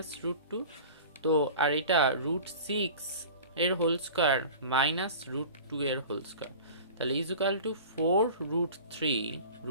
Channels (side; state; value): both; inverted; correlation -0.39